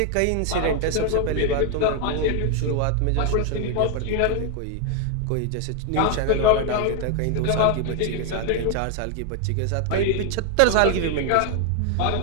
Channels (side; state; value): both; different; correlation 0.00